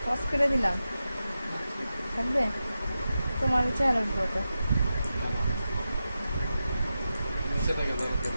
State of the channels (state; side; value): inverted; both; correlation -0.91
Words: পজ করে দিলাম, থাকবে তোমার চেহারার উপর তো। নিচে থেকে ধরে